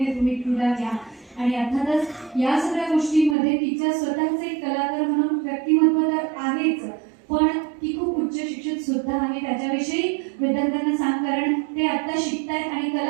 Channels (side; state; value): left; drops out; at 3.4 s